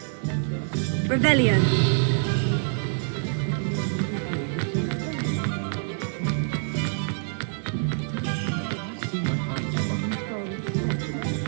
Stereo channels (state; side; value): silent; left; 61 dB below the other